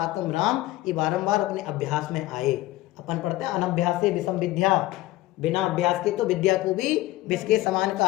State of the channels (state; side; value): quieter; right; 17.0 dB